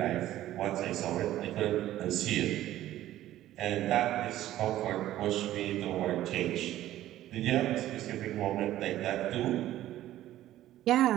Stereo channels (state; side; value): quieter; left; 13.8 dB